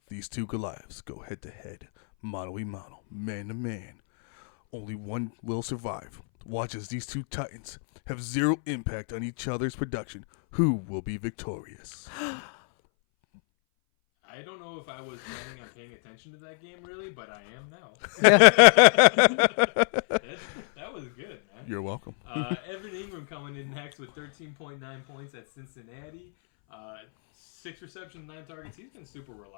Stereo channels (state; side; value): silent; right; 59 dB below the other